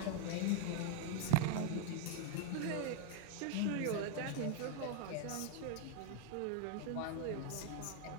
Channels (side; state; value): both; different; correlation 0.00